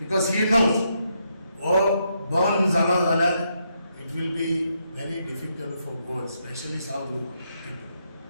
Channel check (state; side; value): inverted; both; correlation -0.79